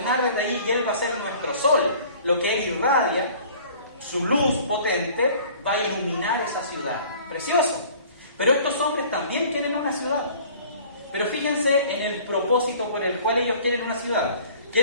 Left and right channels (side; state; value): both; inverted; correlation -0.49